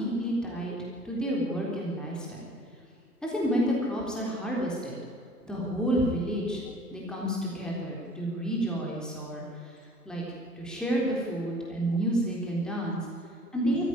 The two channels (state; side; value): normal; both; correlation 0.51